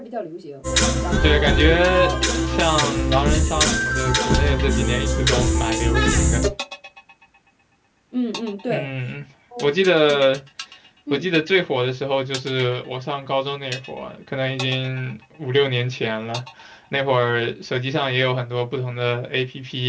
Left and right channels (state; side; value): identical; both; correlation 1.00